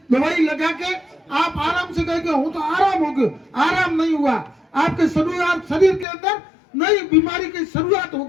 दवाई लगा के आप आराम से कहेंगे हूं तो आराम हो गया, आराम नहीं हुआ। आपके शरीर के अंदर नई बीमारी की शुरुआत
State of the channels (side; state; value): right; drops out; at 6.1 s